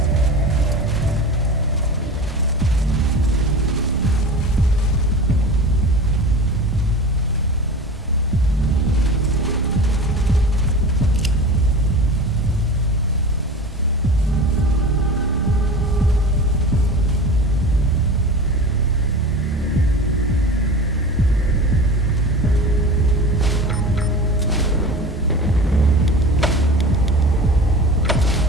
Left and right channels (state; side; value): normal; both; correlation 0.33